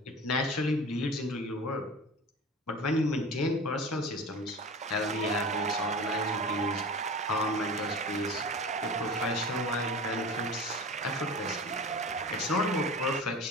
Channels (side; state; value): both; normal; correlation 0.34